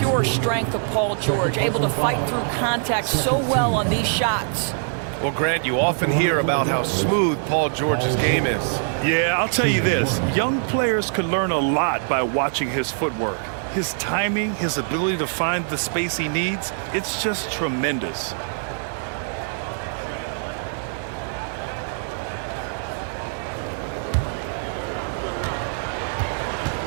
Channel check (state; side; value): silent; left; digital silence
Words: strength of Paul George, able to fight through contact so well on these shots. Well, Grant, you often hear about how smooth Paul George's game is. Yeah, I'll tell you this. Young players can learn a lot by watching his footwork. His timing, his ability to find the space he needs, it's just tremendous.